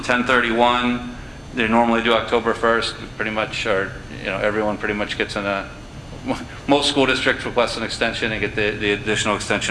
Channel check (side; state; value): both; identical; correlation 1.00